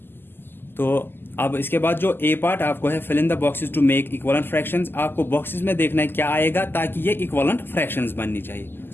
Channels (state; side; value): late; right; 0.10 ms